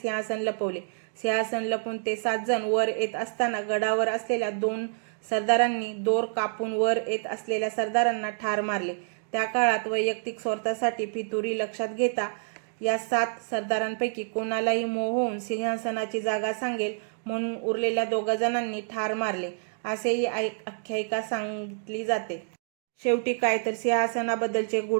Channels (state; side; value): silent; left; digital silence